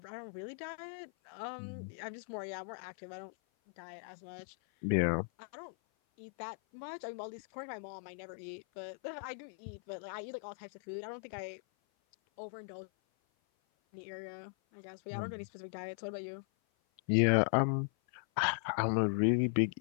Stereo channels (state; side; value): silent; right; 52 dB below the other